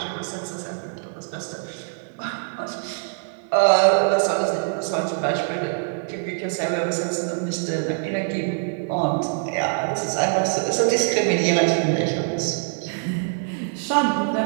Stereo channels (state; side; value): silent; left; digital silence